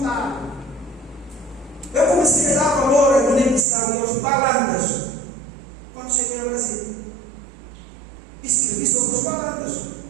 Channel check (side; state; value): left; drops out; at 3.7 s